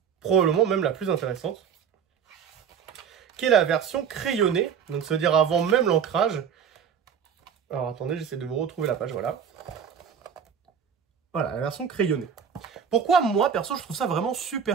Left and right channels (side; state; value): left; quieter; 7.5 dB